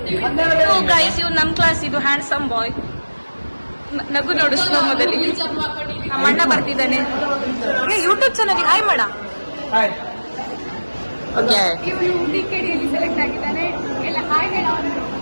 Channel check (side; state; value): both; inverted; correlation -1.00